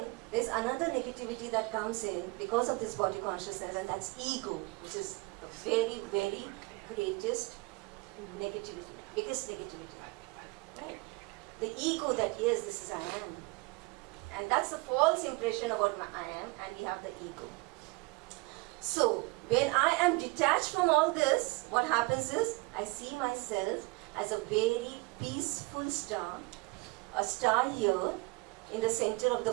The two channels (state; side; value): quieter; left; 25.3 dB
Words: there's another negativity that comes in because of this body consciousness, and that's ego, which is the very, very greatest negativity, biggest negativity. Right? The ego that, yes, this is I am. And that's the false impression about I am, and we have the ego. So, when I am detached from all this, what happens is, I see myself as a very peaceful star, a star here in the center of